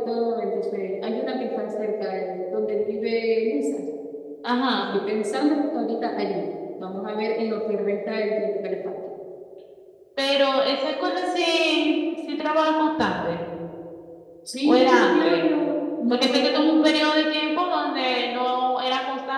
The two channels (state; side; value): identical; both; correlation 1.00